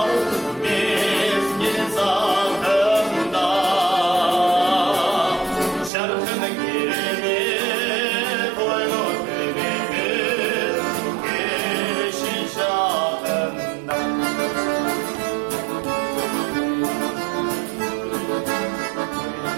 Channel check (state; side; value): drops out; left; at 5.9 s